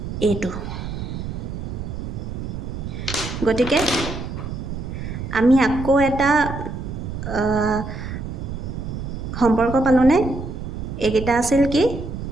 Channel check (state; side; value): noise; right; rumble, 6 dB below the sound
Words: a2 গতিকে আমি আকৌ এটা সম্পৰ্ক পালোনে একেটা আছিল কি